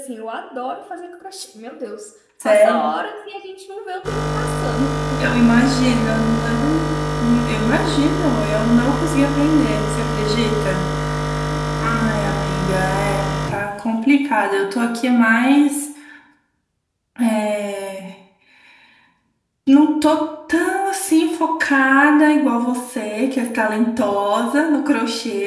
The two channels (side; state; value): both; identical; correlation 1.00